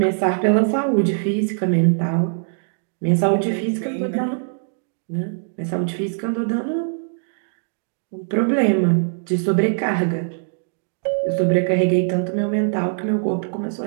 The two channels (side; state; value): left; silent; digital silence